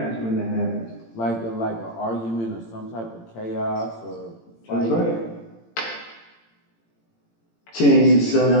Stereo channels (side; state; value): right; late; 18 ms